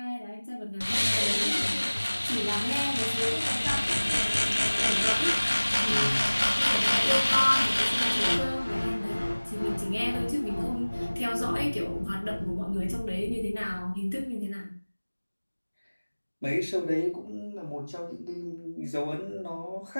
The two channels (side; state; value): both; inverted; correlation -1.00